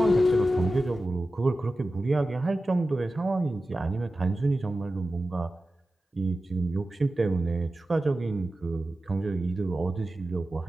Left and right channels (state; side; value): normal; both; correlation 0.94